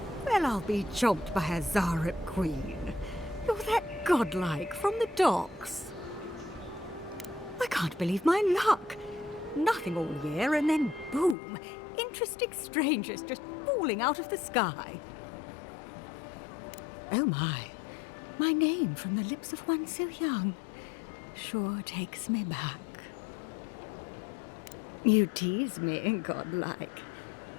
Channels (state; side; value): drops out; right; at 11.4 s